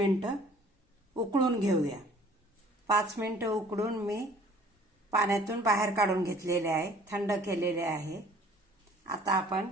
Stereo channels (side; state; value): both; normal; correlation 0.53